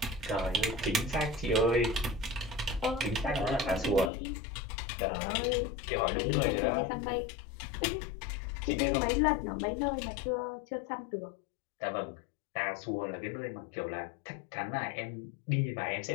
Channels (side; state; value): right; drops out; at 4.1 s